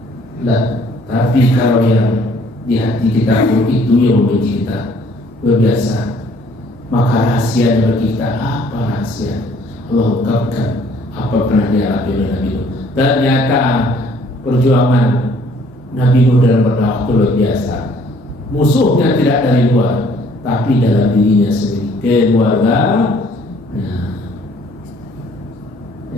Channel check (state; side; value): normal; both; correlation 0.59